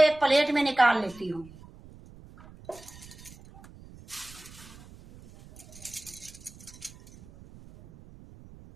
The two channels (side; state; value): right; noise; rumble, 20 dB below the sound